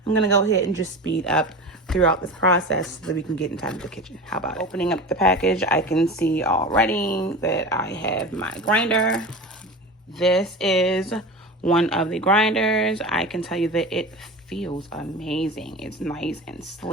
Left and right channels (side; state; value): both; normal; correlation 0.30